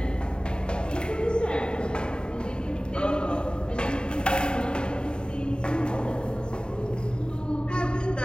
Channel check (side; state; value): right; late; 0.050 ms